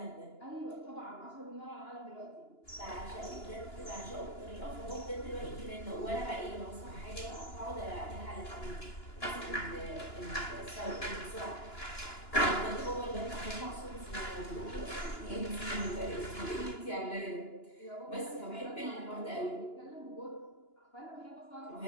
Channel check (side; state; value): right; late; 2.9 ms